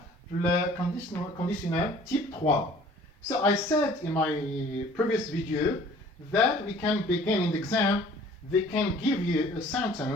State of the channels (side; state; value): both; normal; correlation 0.52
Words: في ال conditional type 3. So I said in my previous video that we can begin in the exam. They can give you a